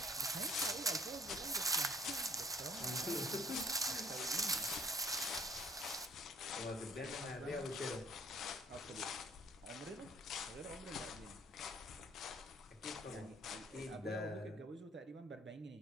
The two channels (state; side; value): normal; both; correlation 0.57